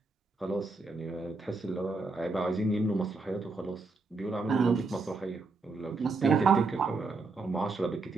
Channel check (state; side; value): quieter; left; 3.8 dB